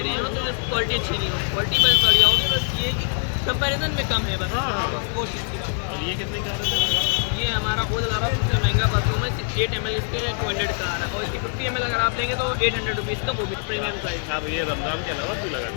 रहे हो तो क्वालिटी अच्छी नहीं हो, क्वालिटी बस बढ़िया होगी, बस ये कंपैरिजन में कम है बस। वो चीज़ की बात है। और ये कितने का है? ये हमारा खुद आ रहा है सबसे महंगा परफ्यूम है, 8 ml इसके 200 का आ रहा है, और इसकी 50 ml अगर आप लेंगे तो 800 रुपीज़ का, वो भी प्रीमियम प्राइस। आप ये रमज़ान के अलावा भी लगाते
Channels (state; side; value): silent; right; 55 dB below the other